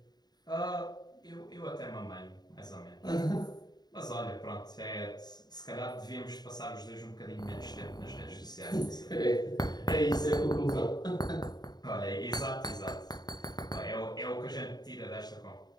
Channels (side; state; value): right; late; 0.20 ms